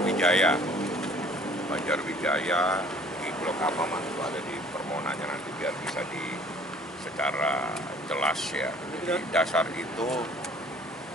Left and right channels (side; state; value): both; normal; correlation 0.53